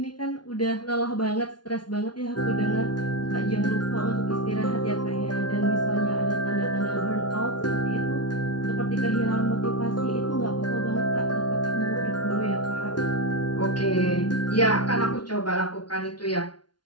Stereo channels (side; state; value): right; late; 0.70 ms